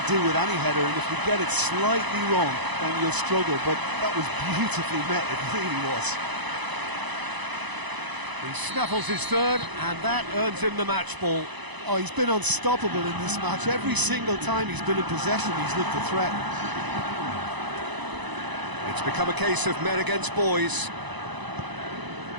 do with any header, and if you get it slightly wrong, then you'll struggle, but that was beautifully met, it really was. He snaffles his third, and that earns him the match ball. Oh, he's been unstoppable in this match. Every single time he's been in possession, he's looked a threat. It's become a case of men against boys.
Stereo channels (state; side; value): late; left; 1.0 ms